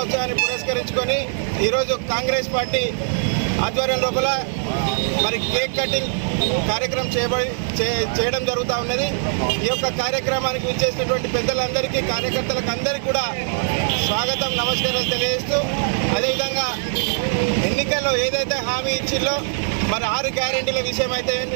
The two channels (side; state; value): left; silent; digital silence